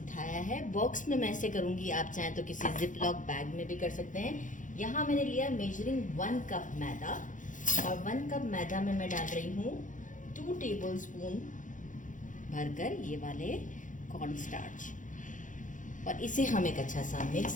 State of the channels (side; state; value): right; late; 0.37 ms